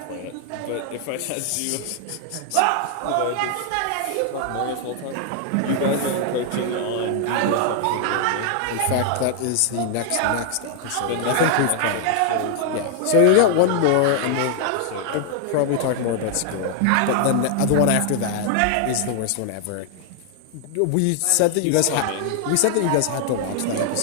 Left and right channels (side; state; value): both; different; correlation 0.00